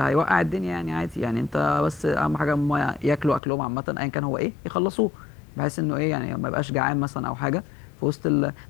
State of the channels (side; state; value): right; drops out; at 3.4 s